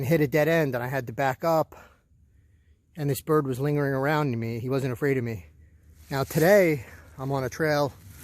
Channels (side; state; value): both; identical; correlation 1.00